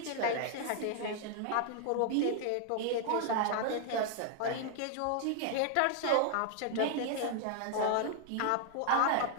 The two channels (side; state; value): both; different; correlation 0.00